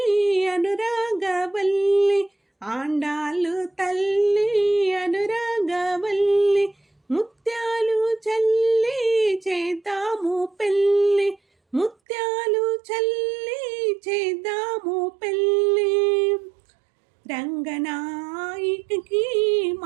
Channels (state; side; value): drops out; left; at 12.0 s